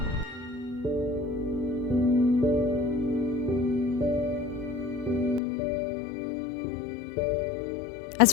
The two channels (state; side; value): drops out; right; at 5.4 s